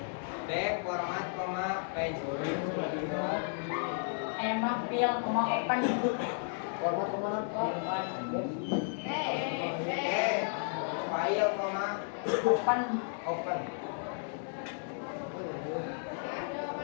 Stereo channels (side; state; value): right; silent; 56 dB below the other